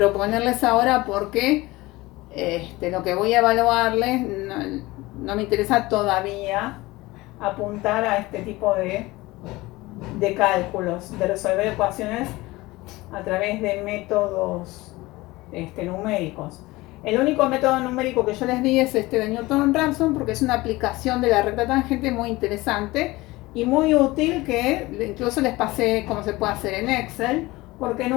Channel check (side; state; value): right; quieter; 20.3 dB